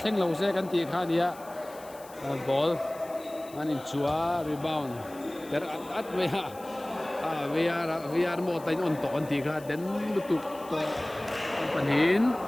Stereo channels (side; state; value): left; noise; hiss, 21 dB below the sound